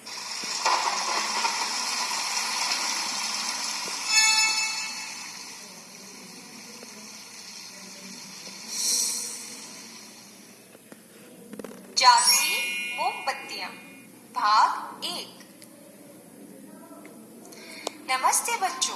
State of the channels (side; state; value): both; identical; correlation 1.00